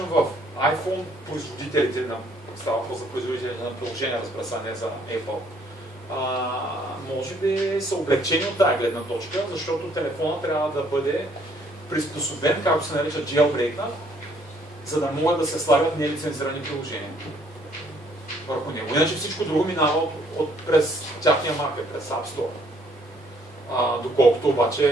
в iPhone производителите, става въпрос за производителите на приложения, разбира се, не за Apple, може би са облегчени от тази гледна точка, защото телефона трябва да бъде приспособен, както се нарича jailbreak, за да могат да се слагат нелицензирани приложения върху него. Иначе всичко друго минава през тяхния маркет, през App Store. Доколкото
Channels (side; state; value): both; normal; correlation 0.65